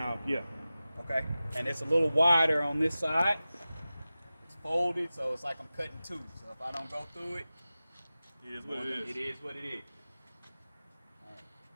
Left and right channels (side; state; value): both; inverted; correlation -0.96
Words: yeah. Okay. And it's a little wider on this side. It's folded, so it's like I'm cutting two. So if I don't go through it, It is what it is. It is what it is.